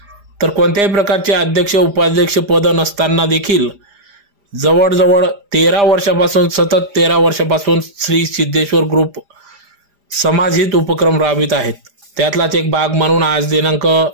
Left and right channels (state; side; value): late; left; 4.9 ms